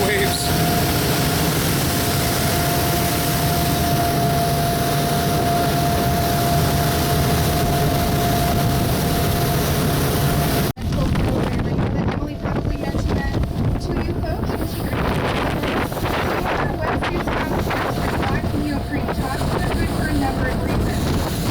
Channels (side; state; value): both; identical; correlation 1.00